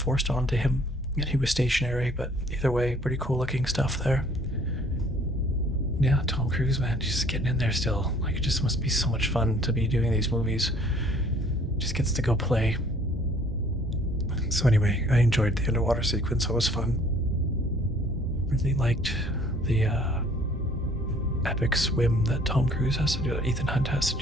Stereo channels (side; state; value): both; normal; correlation 0.57